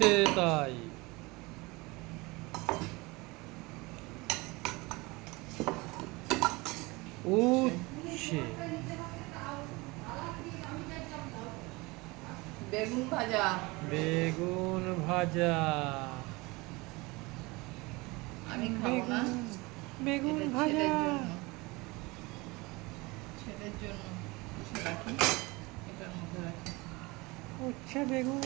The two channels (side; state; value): left; quieter; 24.0 dB